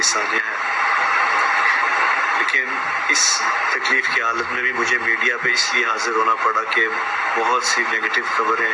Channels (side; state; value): both; identical; correlation 1.00